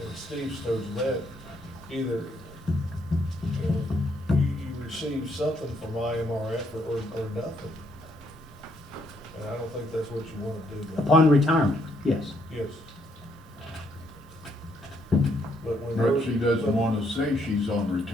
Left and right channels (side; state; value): both; normal; correlation 0.72